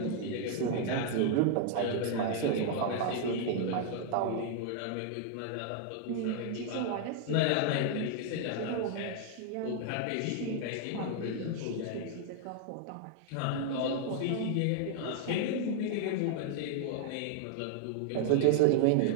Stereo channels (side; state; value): both; different; correlation 0.00